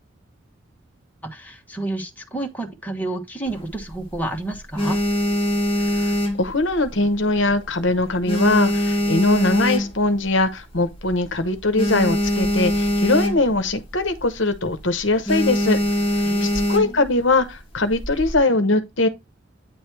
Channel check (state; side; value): normal; both; correlation 0.31